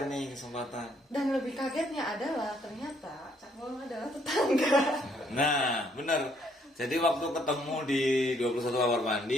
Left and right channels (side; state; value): both; normal; correlation 0.68